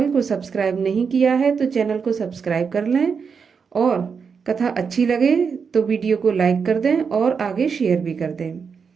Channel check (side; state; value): left; quieter; 5.9 dB